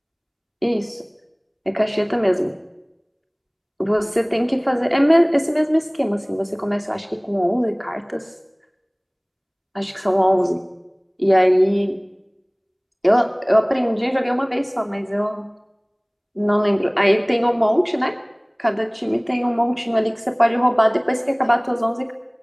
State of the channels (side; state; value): both; identical; correlation 1.00